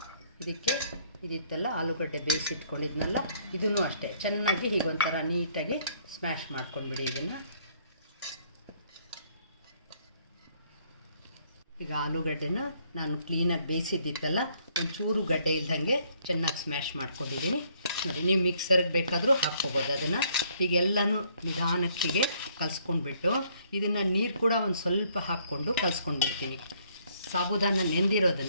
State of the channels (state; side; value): inverted; both; correlation -0.66